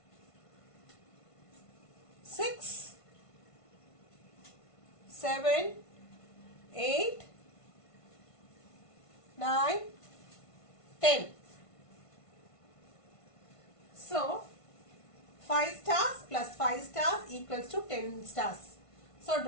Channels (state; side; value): late; right; 1.5 ms